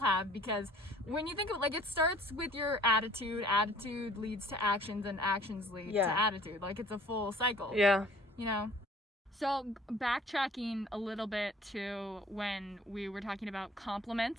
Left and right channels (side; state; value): both; normal; correlation 0.52